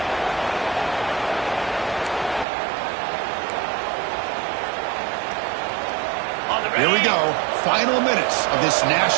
Here we go. Final minutes of this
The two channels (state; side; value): drops out; left; at 2.5 s